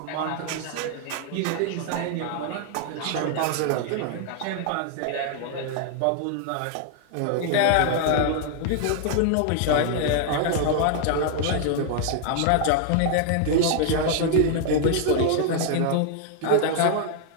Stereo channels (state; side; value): different; both; correlation 0.00